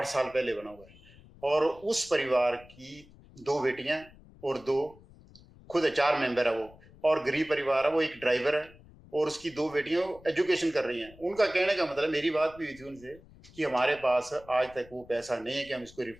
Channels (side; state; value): left; noise; rumble, 23 dB below the sound